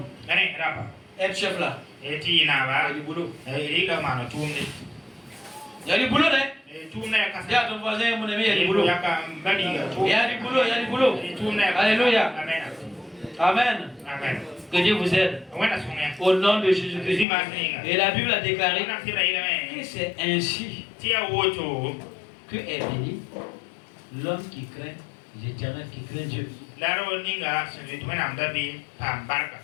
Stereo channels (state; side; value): drops out; right; at 17.2 s